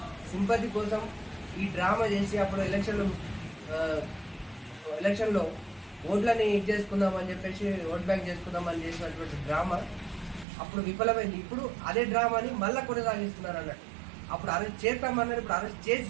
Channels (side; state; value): left; drops out; at 10.5 s